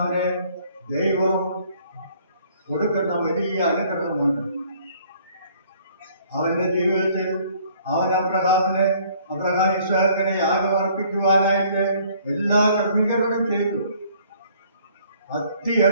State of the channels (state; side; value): inverted; both; correlation -0.59